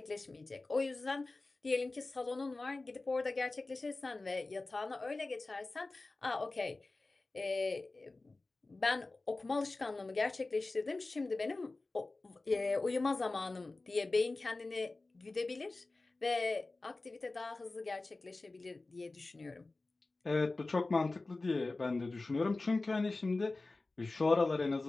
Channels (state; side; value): quieter; right; 3.3 dB